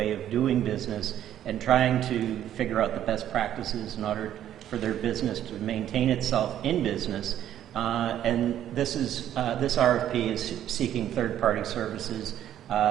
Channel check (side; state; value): left; quieter; 11.3 dB